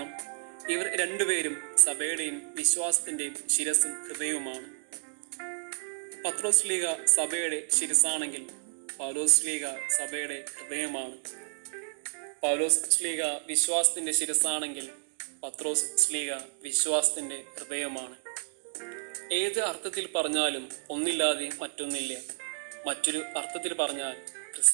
ഇവർ രണ്ടുപേരും സഭയുടെയും വിശ്വാസത്തിൻ്റെയും ശിരസും ഹൃദയവുമാണ്. പത്രോസ് ശ്ലീഹ സഭയുടെ ശിരസാണെങ്കിൽ പൗലോസ് ശ്ലീഹ സഭയുടെ ഹൃദയമാണ്. പൗലോസ് ശ്ലീഹ വിശ്വാസത്തിൻ്റെ ശിരസാണെങ്കിൽ പത്രോസ് ശ്ലീഹ വിശ്വാസത്തിൻ്റെ ഹൃദയമാണ്. ഏത് അർത്ഥത്തിൽ പറഞ്ഞാലും ഒന്നില്ലാതെ മറ്റൊന്നില്ല. മറ്റൊരു അർത്ഥത്തിൽ പറഞ്ഞാൽ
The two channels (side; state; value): left; silent; digital silence